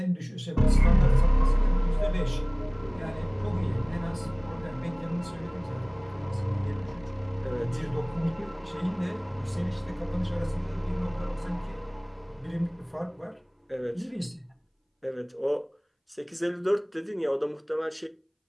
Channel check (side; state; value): both; identical; correlation 1.00